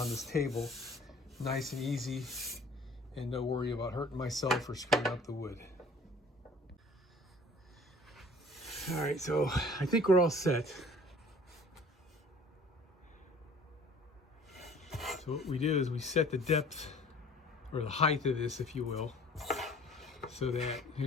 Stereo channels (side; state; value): both; normal; correlation 0.50